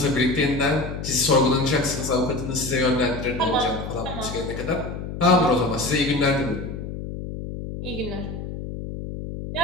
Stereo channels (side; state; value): left; noise; hum, 7 dB below the sound